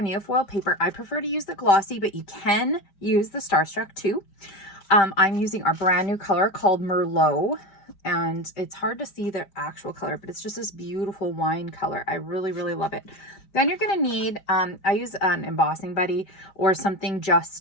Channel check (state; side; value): late; right; 5.1 ms